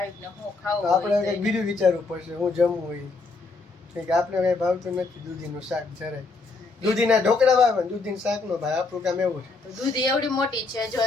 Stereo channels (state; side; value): quieter; right; 3.8 dB